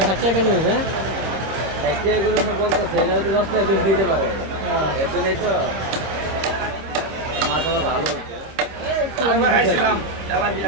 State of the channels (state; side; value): late; left; 26 ms